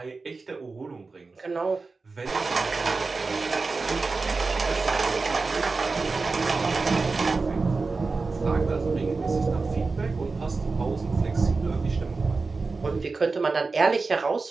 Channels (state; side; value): quieter; left; 4.0 dB